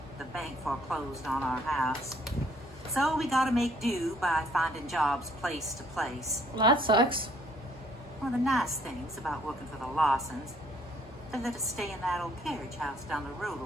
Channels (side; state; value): both; normal; correlation 0.63